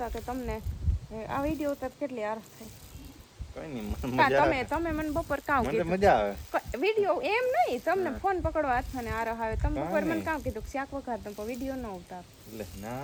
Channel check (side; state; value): both; identical; correlation 1.00